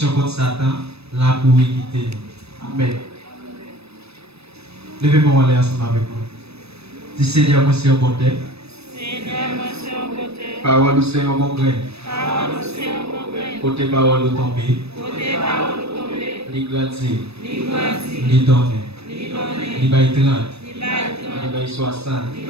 contre Satan, la pour quitter nous. Amen. Levez-moi aller ensemble avec moi. Dis Seigneur, moi c'est un bon terre. Seigneur, moi c'est un côté. Parole, c'est un bon grain. Parole, c'est un bon grain. Côté parole, au tomber. Côté parole, tomber. Li grandir. Li grandir. Li donner. Li donner. Li bay 30. Li bay 30. Li bay 60. Li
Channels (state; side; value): late; left; 0.78 ms